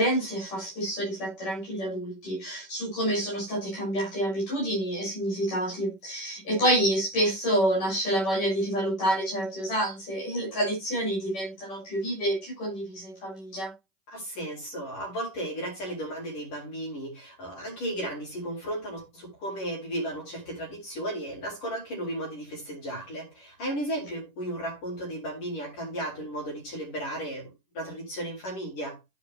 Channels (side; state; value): right; late; 10 ms